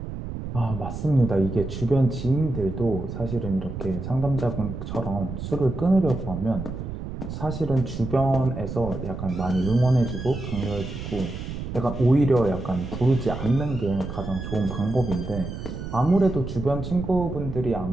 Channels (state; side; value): noise; right; rumble, 7 dB below the sound